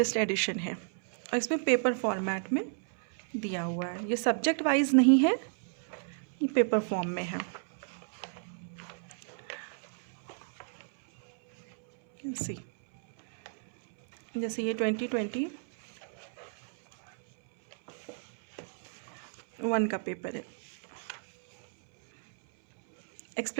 एडिशन है और इसमें पेपर फॉर्मेट में दिया हुआ है। ये सब्जेक्ट वाइज नहीं है, ये पेपर फॉर्म में है। सी जैसे ये 2021 का पेपर है।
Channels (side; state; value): left; silent; 56 dB below the other